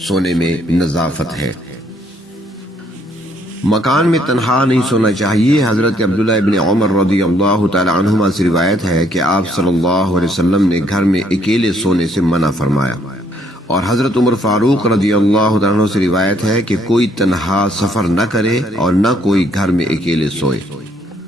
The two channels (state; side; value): normal; both; correlation 0.68